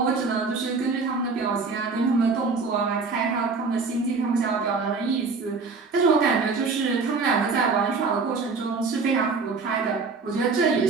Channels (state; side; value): quieter; left; 4.5 dB